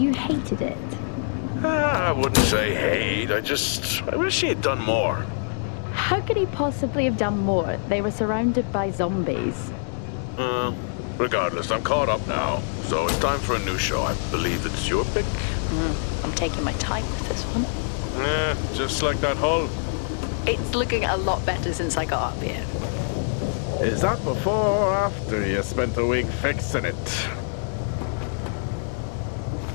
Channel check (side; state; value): right; silent; digital silence